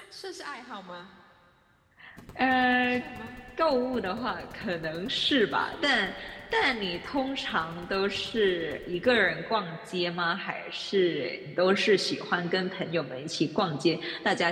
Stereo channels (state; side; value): identical; both; correlation 1.00